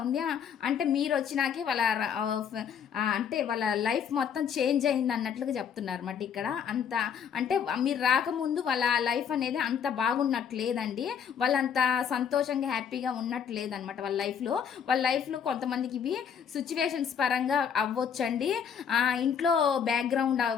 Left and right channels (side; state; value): right; quieter; 7.7 dB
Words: ఉంది. అంటే మీరు వచ్చినాకే వాళ్ళ అంటే వాళ్ళ లైఫ్ మొత్తం చేంజ్ అయింది అన్నట్లుగా చెప్తున్నారు అన్నమాట ఇక్కడ. అంత అంటే మీరు రాకముందు వాళ్ళ లైఫ్ అనేది అంత బాగున్నట్లేదండి, వాళ్ళంత సంతోషంగా హ్యాపీగా ఉన్నట్లేదనమాట వాళ్ళ లైఫ్లో కొంతమందికి ఇవి సిచ్యువేషన్స్ పరంగా అవ్వచ్చండి, ఇంట్లో బ్యాక్గ్రౌండ్